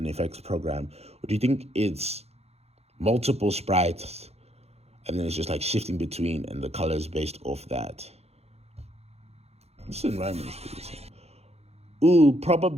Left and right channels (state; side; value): late; left; 0.30 ms